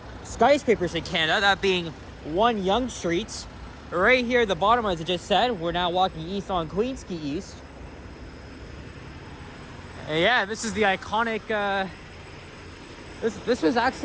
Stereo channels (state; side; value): identical; both; correlation 1.00